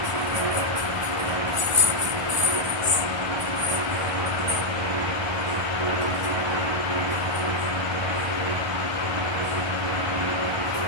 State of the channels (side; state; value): left; late; 1.3 ms